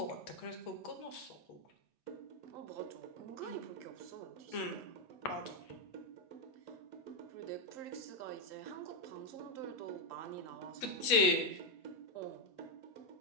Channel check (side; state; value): right; late; 8.4 ms